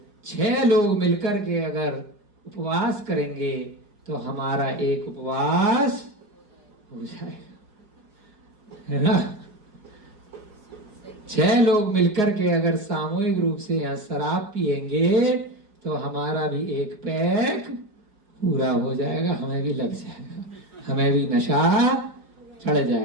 6 लोग मिलकर के अगर उपवास करेंगे तो हमारा एक उपवास हो जाएगा, है ना। 6 लोग मिलकर के अगर सामूहिक रूप से यहाँ शराब पिएंगे तो हमारा भी एक पैक पूरा हो जाएगा, हमें भी लग जाएगा, हमें भी नशा चढ़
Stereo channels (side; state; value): left; late; 4.9 ms